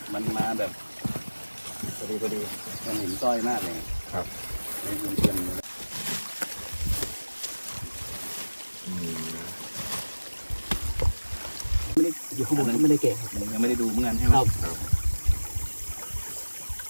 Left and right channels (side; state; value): both; inverted; correlation -1.00